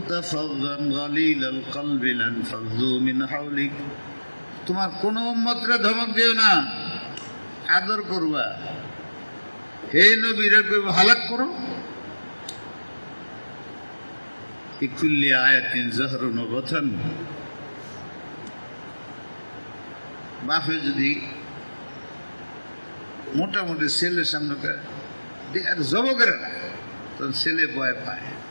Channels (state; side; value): inverted; both; correlation -1.00